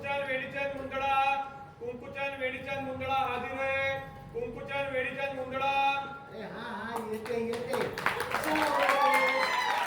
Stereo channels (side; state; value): both; identical; correlation 1.00